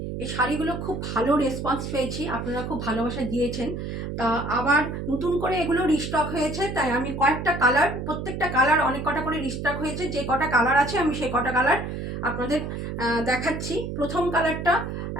এই শাড়িগুলো খুব ভালো রেসপন্স পেয়েছি, আপনারা খুব ভালোবাসা দিয়েছেন। তা আবার নতুন করে এগুলো রিস্টক হয়েছে, তাই আমি কয়েকটা কালার, প্রত্যেকটা কালার অনেক কটা করে রিস্টক হয়েছে। যে কটা কালার আছে আমি সেই কটা কালার আপনাদের দেখাচ্ছি। প্রথম কালারটা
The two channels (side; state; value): right; noise; hum, 5 dB below the sound